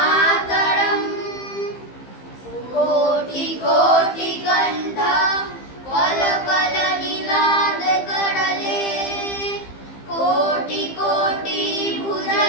कोटि कोटि कंठ कलकलनिनाद करले कोटि कोटि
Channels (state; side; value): late; right; 15 ms